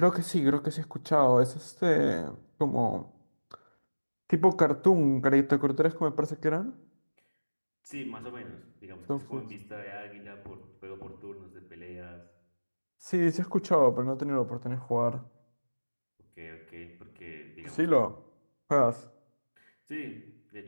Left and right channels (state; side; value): inverted; both; correlation -1.00